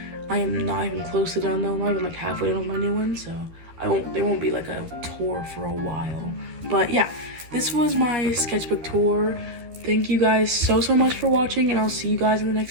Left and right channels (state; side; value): late; left; 13 ms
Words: I am not even close to done though. I'm not even like halfway done with my new one, so there won't be like a tour for a while. But yeah, this was my sketchbook tour. Thank you guys so much for watching, and I'll see you guys in the